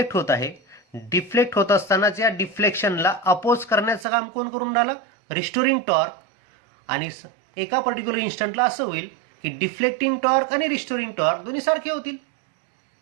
होत आहे. डिफ्लेक्ट होत असतानाच या डिफ्लेक्शनला अपोज करण्याचं काम कोण करून राहिलं? Restoring torque. आणि एका पर्टिक्युलर इन्स्टंटला असं होईल की डिफ्लेक्टिंग टॉर्क आणि रिस्टोरिंग टॉर्क दोन्ही सारखे होतील.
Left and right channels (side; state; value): left; drops out; at 4.0 s